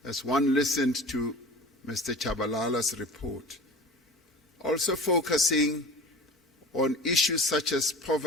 as one listened to Mr. Chabalala's report, also focusing on issues such as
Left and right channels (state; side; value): normal; both; correlation 0.38